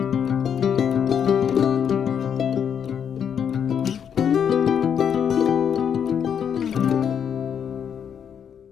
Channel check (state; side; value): quieter; right; 8.0 dB